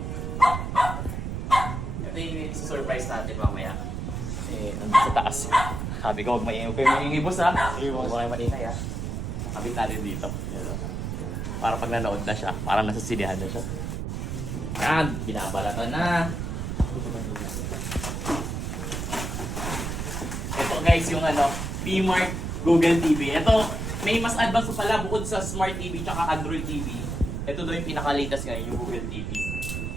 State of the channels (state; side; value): noise; right; rumble, 3 dB below the sound